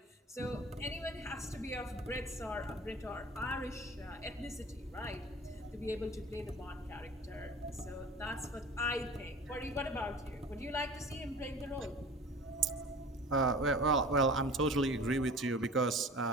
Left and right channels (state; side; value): normal; both; correlation 0.41